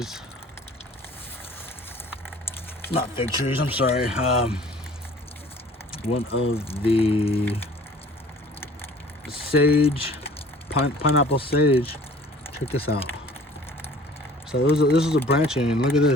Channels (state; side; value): normal; both; correlation 0.50